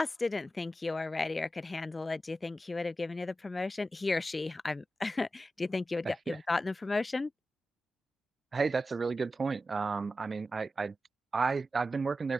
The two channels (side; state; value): both; normal; correlation 0.92